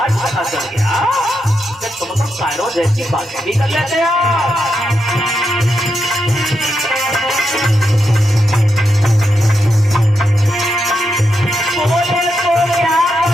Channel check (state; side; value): normal; both; correlation 0.84